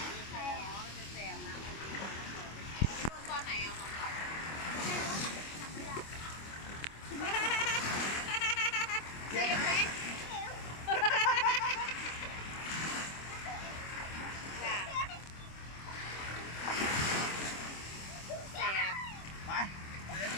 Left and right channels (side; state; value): right; late; 25 ms